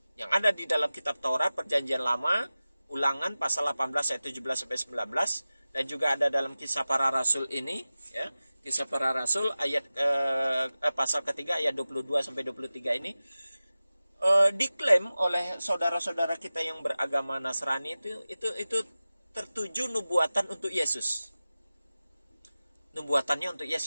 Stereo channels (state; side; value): inverted; both; correlation -0.96